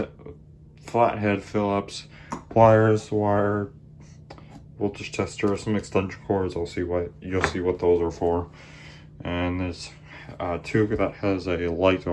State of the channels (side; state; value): both; identical; correlation 1.00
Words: flathead Phillips, pliers, wire, voltage tester, some extension cords. You'll see what those are for. And there's a tube that has a light